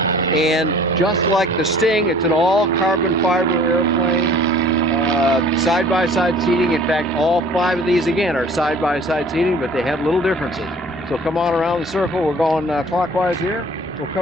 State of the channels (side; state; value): both; normal; correlation 0.50